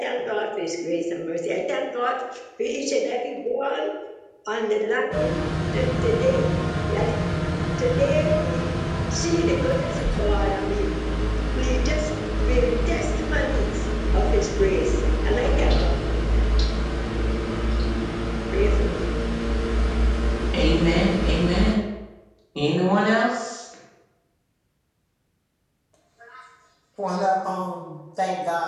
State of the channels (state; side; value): identical; both; correlation 1.00